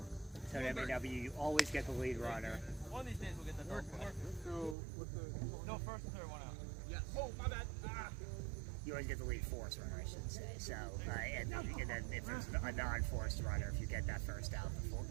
So at MAW, you always get the lead runner. One of these days we'll get the double play. So, with the... No, first and third, one out. Yes. Oh, my bad. Ah. You always get the lead force runner, I should say. So, and then if there's a non-forced runner, if you get that first out,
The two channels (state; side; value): drops out; left; at 4.8 s